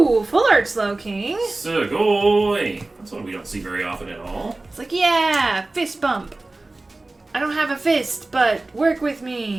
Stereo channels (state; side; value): quieter; left; 3.0 dB